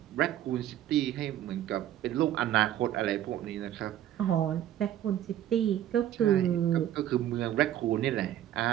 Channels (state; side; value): quieter; left; 12.0 dB